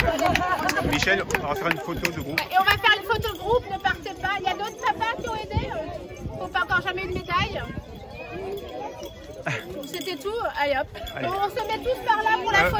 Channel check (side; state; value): both; identical; correlation 1.00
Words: Michel, on va faire une photo de groupe. et on va faire une photo de groupe, ne partez pas. Il y a d'autres papas qui ont aidé. Qui n'ont pas encore jamais eu de médaille. C'était tout. Allez hop. Allez. On se met tous par là pour la